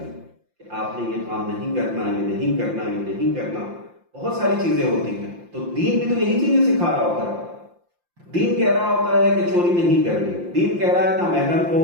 کہ آپ نے یہ کام نہیں کرنا، یہ نہیں کرنا، یہ نہیں کرنا، بہت ساری چیزیں ہوتی ہیں. تو دین بھی تو یہی چیزیں سکھا رہا ہوتا ہے. دین کہہ رہا ہوتا ہے کہ چوری نہیں کرنی، دین کہہ رہا ہے نا محرم کو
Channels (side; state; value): left; late; 5.7 ms